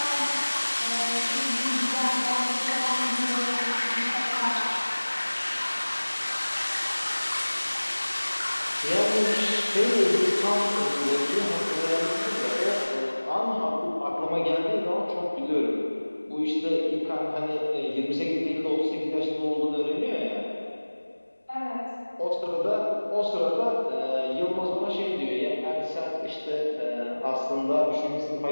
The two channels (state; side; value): inverted; both; correlation -1.00